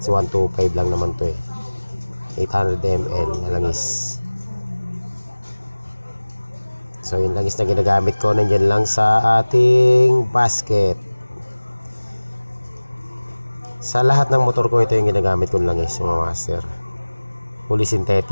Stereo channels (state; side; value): inverted; both; correlation -1.00